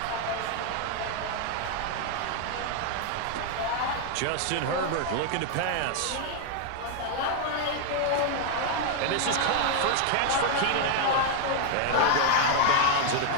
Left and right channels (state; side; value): different; both; correlation 0.00